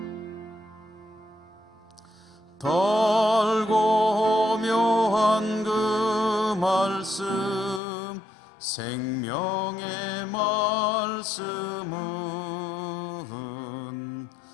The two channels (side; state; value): right; drops out; at 7.8 s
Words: 달고 묘한 그 말씀, 생명의 말씀은